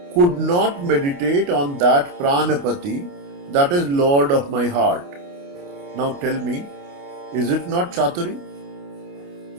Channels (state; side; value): late; left; 29 ms